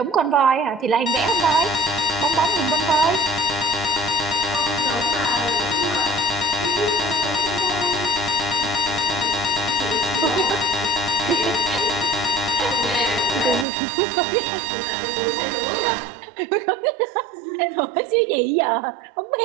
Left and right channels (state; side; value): drops out; left; at 13.7 s